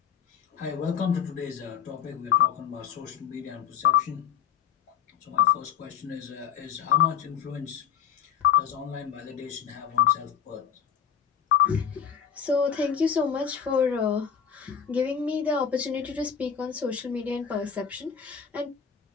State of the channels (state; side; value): quieter; right; 8.2 dB